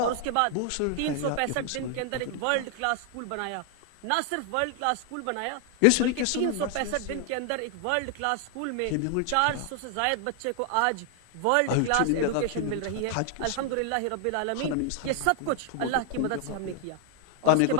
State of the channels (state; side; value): different; both; correlation 0.00